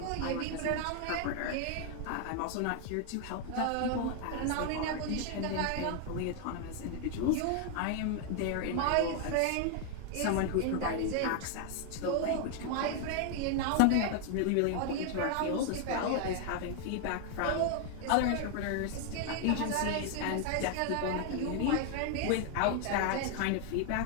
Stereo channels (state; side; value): different; both; correlation 0.00